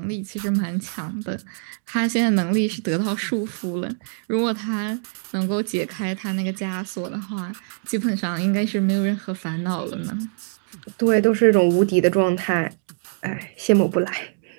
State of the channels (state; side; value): silent; left; digital silence